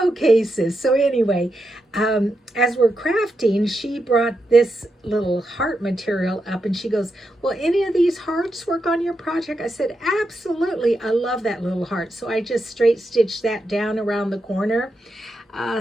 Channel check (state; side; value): normal; both; correlation 0.86